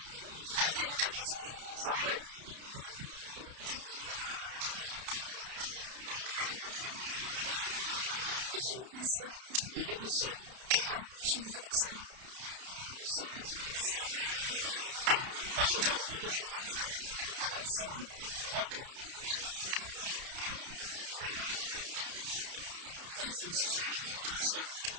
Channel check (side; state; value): left; late; 31 ms